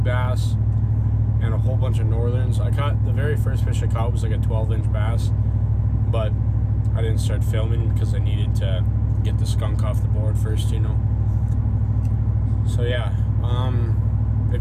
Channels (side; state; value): both; identical; correlation 1.00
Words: bass and a whole bunch of northerns. I caught, the very first fish I caught was like a 12-inch bass, but I didn't start filming because I needed to get the skunk off the board first, you know. So yeah,